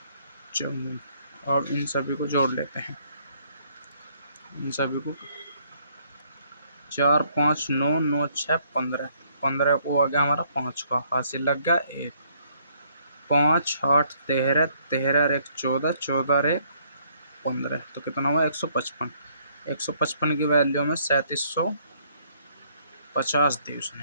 54। और इन सभी को जोड़ लेते हैं। इन सभी को 4 5 9 9 6 15, 15 को आ गया हमारा 5 का, हासिल लग गया 1। 5 8 13, 13 और 1 14, 14 और 1 15। तो कितना हुआ 155। 155 की वैल्यू में 3750 दी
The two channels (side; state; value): both; inverted; correlation -0.67